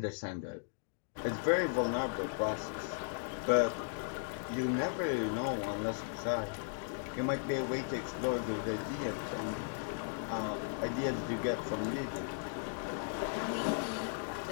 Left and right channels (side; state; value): right; silent; digital silence